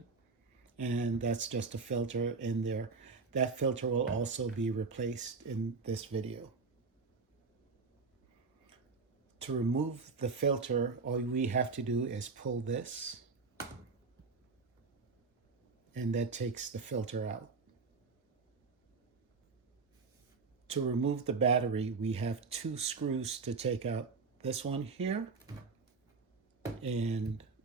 and that's just a filter in there. That filter will also be replaced in this video. To remove the filter, all we have to do is pull this, and that takes the filter out. To remove the battery, we have two screws to take out. This one here, and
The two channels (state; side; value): quieter; left; 4.5 dB